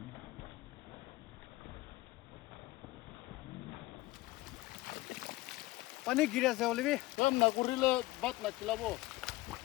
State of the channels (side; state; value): right; quieter; 19.6 dB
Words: पानी गिरा से ओलिवी. 그럼 나 고릴라 밭나 kilabo